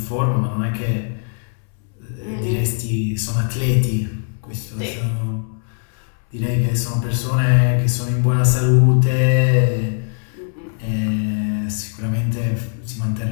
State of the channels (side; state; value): right; silent; 65 dB below the other